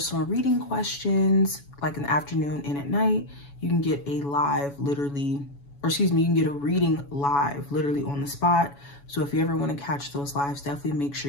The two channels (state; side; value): late; right; 7.1 ms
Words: reading questions like in the afternoon and at night. You can get a live literally, or excuse me, you can get a reading live literally on the spot. So if you ever want to catch those lives, definitely make